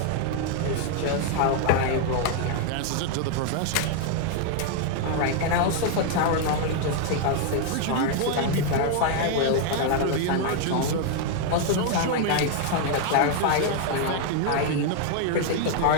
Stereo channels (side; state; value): both; different; correlation 0.00